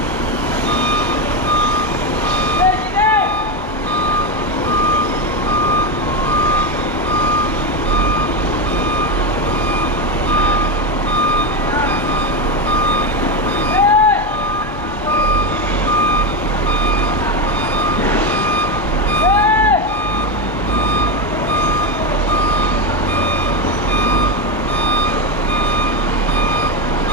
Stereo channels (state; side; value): normal; both; correlation 0.12